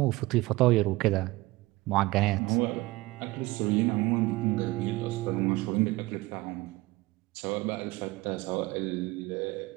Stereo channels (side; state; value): left; quieter; 20.5 dB